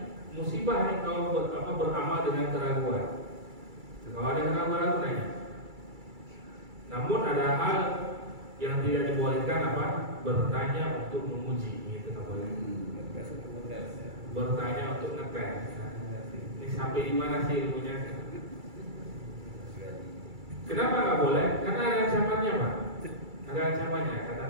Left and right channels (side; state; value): left; late; 2.3 ms